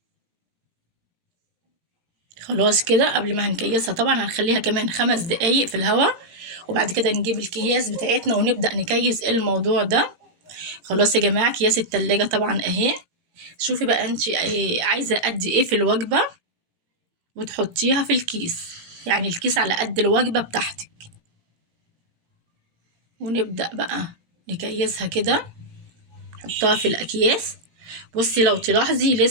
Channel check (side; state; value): left; late; 18 ms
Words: خلاص كده قبل ما هنكيسها طبعا هنخليها كمان 5 دقايق في الهواء، وبعد كده نجيب الأكياس بتاعتنا ونبدأ نكيس الموضوع ده. خلاص يا جماعة، أكياس التلاجة طبعا اهي. شوفي بقى انت عايزة قد ايه في الوجبة وتحطيها في الكيس، يعني الكيس على قد الوجبة بتاعتك. ونبدأ بقى نكيسها كده، نحطها في الأكياس. بصي لو تلاحظي